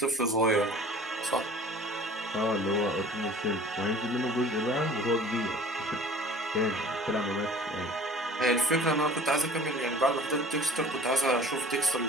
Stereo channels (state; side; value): normal; both; correlation 0.45